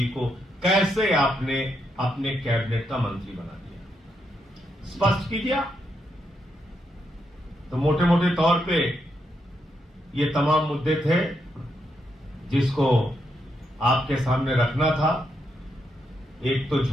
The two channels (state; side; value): normal; both; correlation 0.81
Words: को, कैसे आपने अपने कैबिनेट का मंत्री बना दिया? स्पष्ट कीजिए। तो मोटे मोटे तौर पे ये तमाम मुद्दे थे जिसको आपके सामने रखना था। एक तो